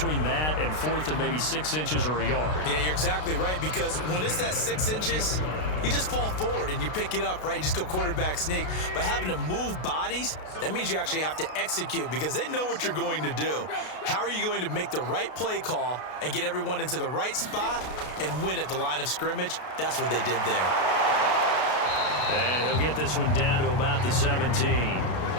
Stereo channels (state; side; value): late; right; 32 ms